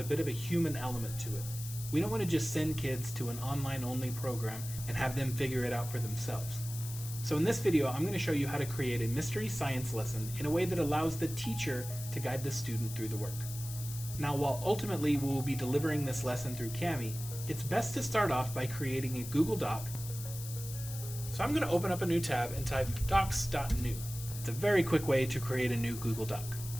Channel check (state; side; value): noise; left; hiss, 11 dB below the sound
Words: bit of a human element to it. We don't want to just send kids to an online-only program and have them figure it out for themselves. So in this video, I'm going to show you how to create a mystery science lesson in a way that allows the teacher to guide the student through the work. Now, while ultimately we will be delivering this lesson through Kami, it's best to start off by creating a Google Doc. So I'm going to open up a new tab and type docs.new. It's a very quick way to create a new Google Doc.